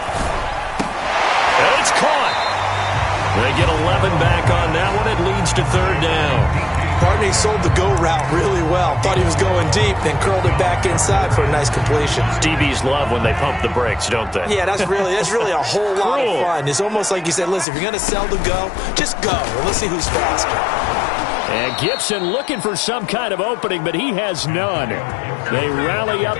And it's caught. They get 11 back on that one. It leads to 3rd down. Partney sold the go route really well. Thought he was going deep, then curled it back inside for a nice completion. DBs love when they pump the brakes, don't they? Yeah, that's really a whole lot of fun. It's almost like you said, listen, if you're going to sell the go, just go. And let's see who's faster. And Gibson looking for some kind of opening, but he has none. They rally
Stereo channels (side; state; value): right; drops out; at 17.7 s